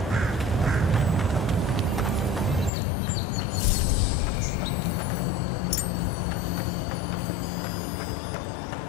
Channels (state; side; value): drops out; right; at 2.7 s